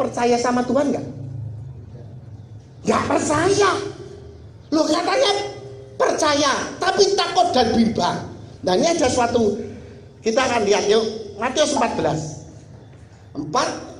sama Tuhan nggak? Nggak percaya. Loh, katanya percaya tapi takut dan bimbang. Nah, ini ada suatu, kita akan lihat yuk, Matius 14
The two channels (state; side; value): identical; both; correlation 1.00